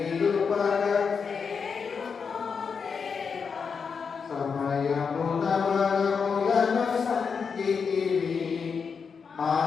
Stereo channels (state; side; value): quieter; right; 5.8 dB